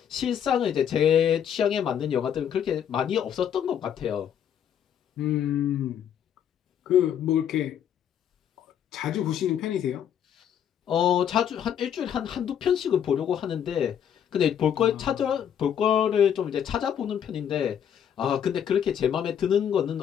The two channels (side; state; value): right; quieter; 9.0 dB